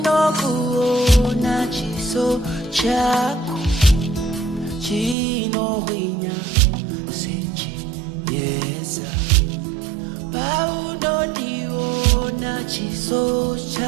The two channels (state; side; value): drops out; left; at 5.2 s